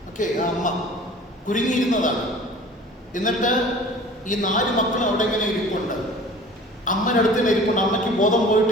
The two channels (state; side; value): normal; both; correlation 0.45